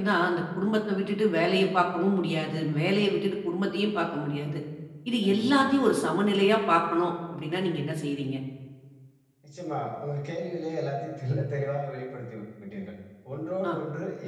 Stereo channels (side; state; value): both; identical; correlation 1.00